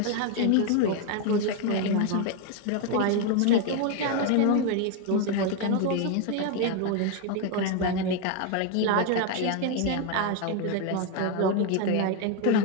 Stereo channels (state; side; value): different; both; correlation 0.01